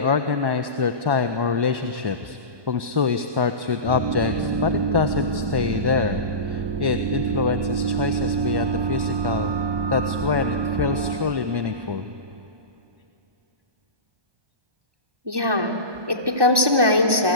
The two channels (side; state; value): left; late; 1.1 ms